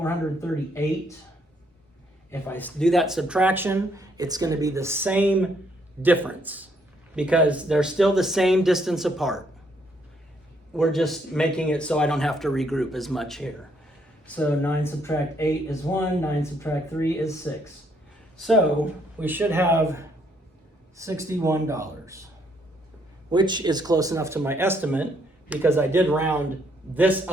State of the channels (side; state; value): both; normal; correlation 0.71